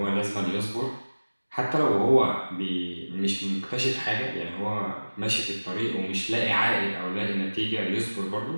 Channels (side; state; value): both; inverted; correlation -1.00